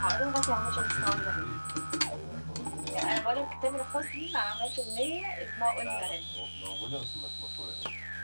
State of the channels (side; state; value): both; inverted; correlation -1.00